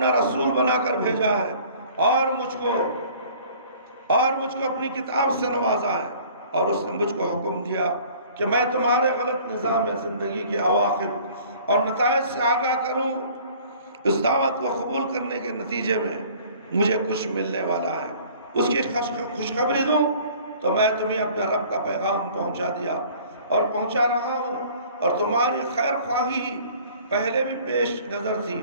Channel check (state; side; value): inverted; both; correlation -0.51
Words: رسول بنا کر بھیجا ہے اور مجھ کو اپنی کتاب سے نوازا ہے، اور اس نے مجھ کو حکم دیا کہ میں تمہارے غلط نظام زندگی کے عواقب اور نتائج سے آگاہ کروں۔ اس دعوت کو قبول کرنے کے نتیجے میں مجھے کچھ ملنے والا ہے، اس کی خوشخبری دوں تو میں تمہیں اپنے رب کا پیغام پہنچا دیا اور پہنچا رہا ہوں، اور تمہاری خیر خواہی پہلے بھی پیش نظر تھی